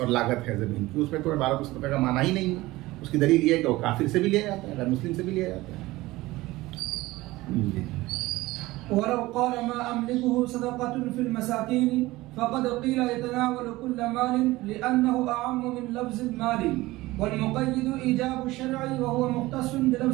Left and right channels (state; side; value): quieter; left; 19.0 dB